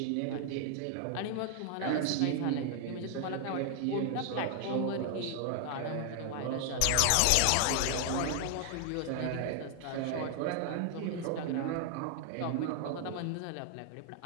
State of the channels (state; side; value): different; both; correlation 0.00